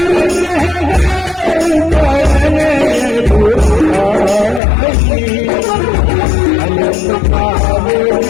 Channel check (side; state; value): right; drops out; at 4.6 s